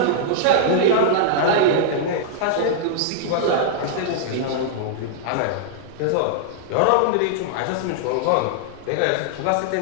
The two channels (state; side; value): different; both; correlation -0.02